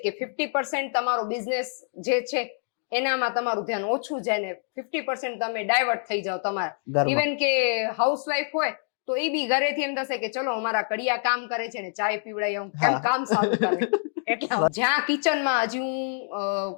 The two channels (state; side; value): silent; right; digital silence